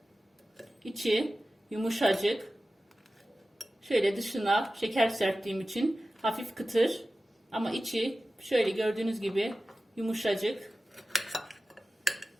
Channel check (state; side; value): normal; both; correlation 0.95